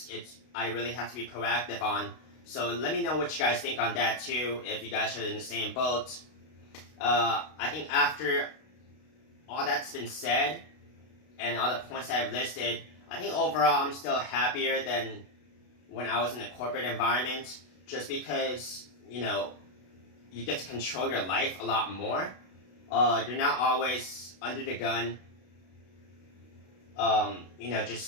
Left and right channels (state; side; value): late; right; 32 ms